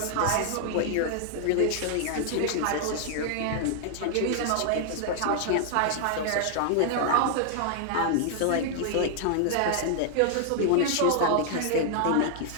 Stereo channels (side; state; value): both; different; correlation 0.00